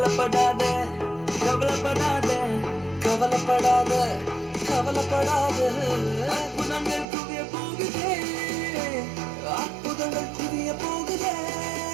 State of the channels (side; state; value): left; drops out; at 7.1 s